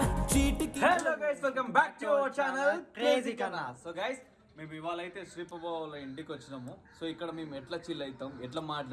చీటికి. Hello guys, welcome back to our channel crazy కన్నా. సో గైస్, మేము ఇవాళ అయితే శ్రీపబాబు వాళ్ళ ఇంటికి వచ్చినాము. సో ఇక్కడ మేము ఎట్లా చిల్ అవుతాం, ఎట్లా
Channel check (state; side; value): identical; both; correlation 1.00